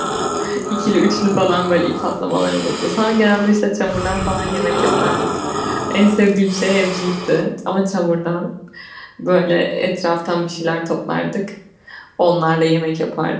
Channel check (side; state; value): both; identical; correlation 1.00